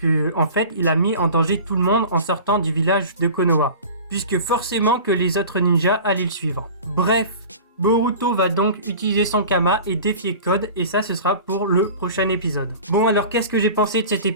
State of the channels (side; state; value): both; inverted; correlation -0.38